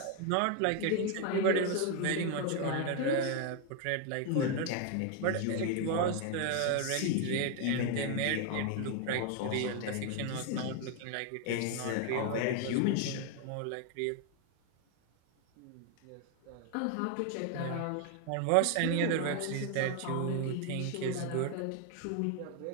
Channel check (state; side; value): different; both; correlation 0.01